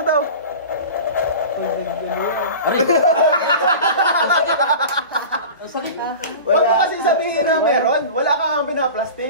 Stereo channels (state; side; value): inverted; both; correlation -0.34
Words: daw. Aray! Ang sakit ha? Huwag mo kasi sabihin na meron. Wala ka nga